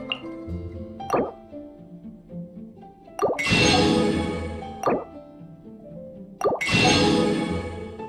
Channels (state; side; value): identical; both; correlation 1.00